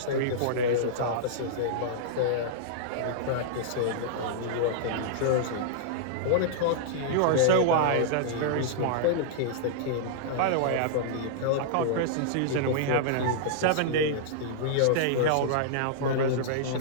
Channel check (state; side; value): different; both; correlation -0.02